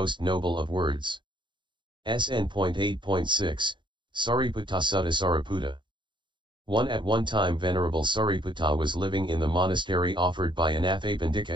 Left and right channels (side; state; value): left; late; 0.23 ms